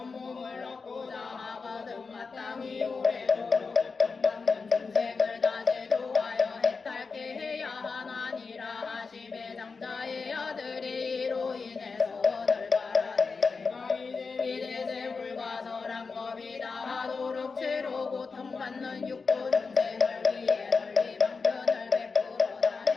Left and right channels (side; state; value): right; quieter; 4.7 dB